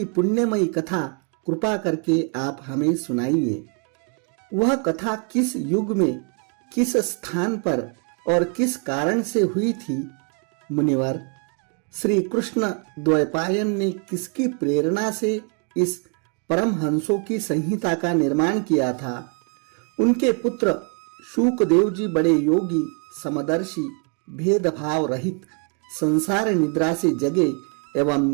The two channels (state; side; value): quieter; left; 39.1 dB